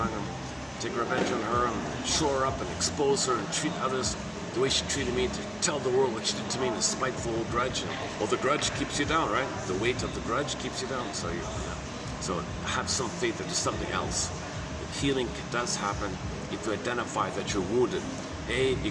gonna take revenge on her and show her up and expose her and treat others the way she treated me, to tell the world what she did to me in a spiteful old grudge. Well, the grudge keeps you down, right? The weight of the grudge keeps you down. So have some faith that there's something else. That healing does happen if you identify that you're wounded. You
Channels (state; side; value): identical; both; correlation 1.00